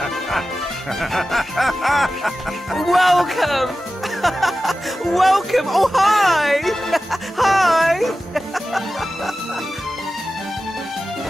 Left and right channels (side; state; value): both; normal; correlation 0.94